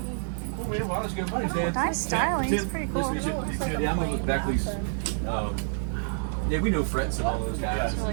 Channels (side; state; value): left; silent; digital silence